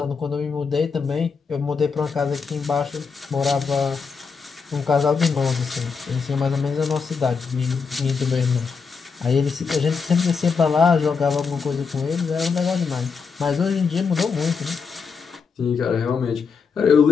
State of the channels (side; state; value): right; quieter; 5.4 dB